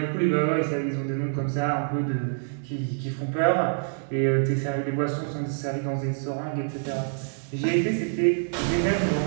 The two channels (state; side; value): silent; left; digital silence